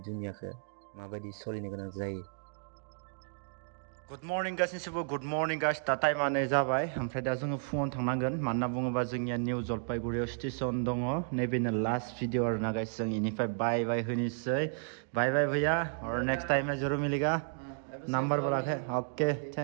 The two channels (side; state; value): left; silent; digital silence